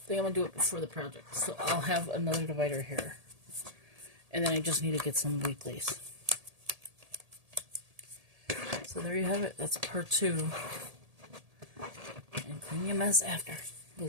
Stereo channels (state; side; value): late; left; 1.8 ms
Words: think I'm going to do it before the project. So I'll have another divider here. And then I just need to get some weeklies. So there you have it. That's part 2. And clean your mess after,